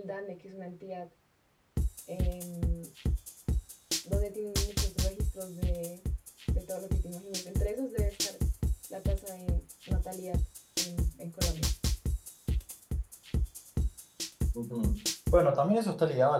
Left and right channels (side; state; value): both; identical; correlation 1.00